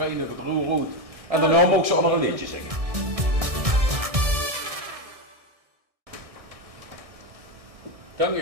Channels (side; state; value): left; late; 1.6 ms